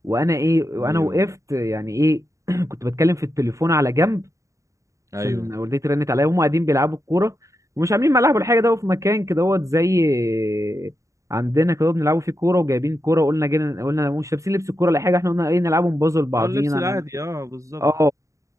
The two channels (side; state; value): left; late; 0.15 ms